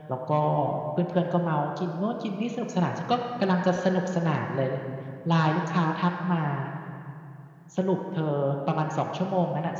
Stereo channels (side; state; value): both; identical; correlation 1.00